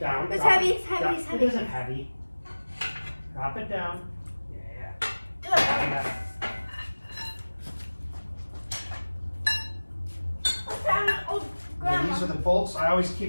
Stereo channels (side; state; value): both; inverted; correlation -1.00